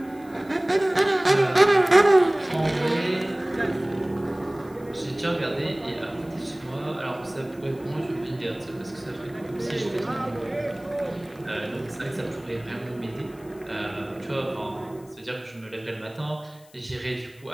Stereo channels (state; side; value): noise; left; hiss, 27 dB below the sound